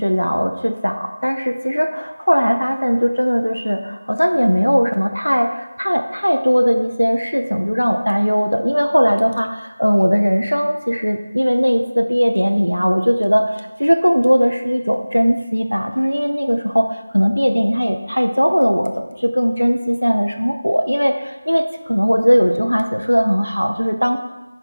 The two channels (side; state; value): both; inverted; correlation -1.00